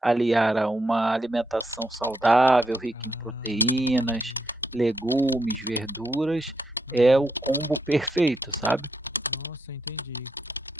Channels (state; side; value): normal; both; correlation 0.80